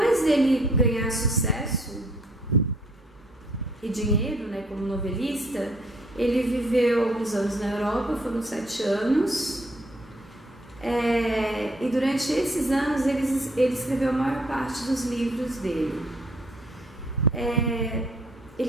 dele ganhar sucesso e dinheiro, né, como novelista, ele viveu alguns anos na Europa, foram 7 anos, e durante esses anos ele escreveu a maior parte dos livros dele.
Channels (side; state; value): both; normal; correlation 0.64